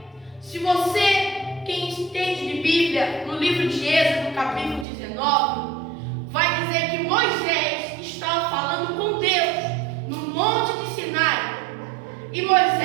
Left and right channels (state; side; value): drops out; left; at 4.9 s